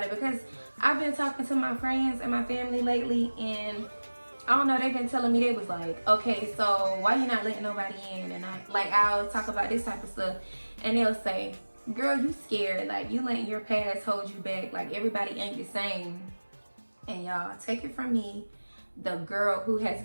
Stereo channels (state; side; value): inverted; both; correlation -1.00